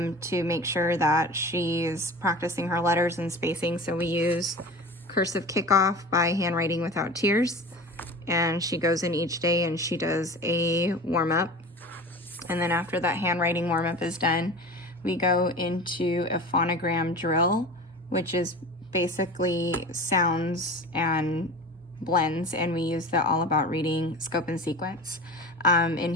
make sure that she's practicing her letters and spacing. So we use Cursive Kickoff by Handwriting Without Tears, and she goes in each day and she does a warm-up. And then after that handwriting warm-up is done, we go into a phonogram drill, which is basically sounds and blends, and we use the All About Reading scope and sequence. In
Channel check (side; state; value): both; normal; correlation 0.34